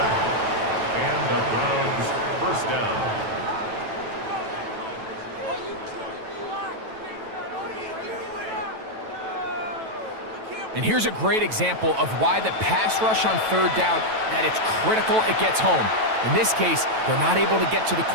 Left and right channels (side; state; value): left; late; 9.1 ms